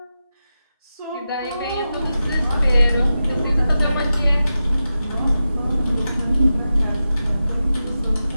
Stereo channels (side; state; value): both; inverted; correlation -0.92